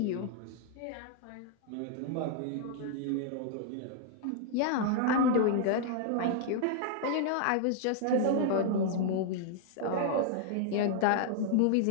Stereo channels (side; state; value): both; different; correlation -0.01